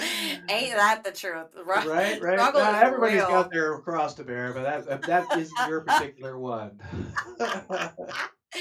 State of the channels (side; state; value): both; identical; correlation 1.00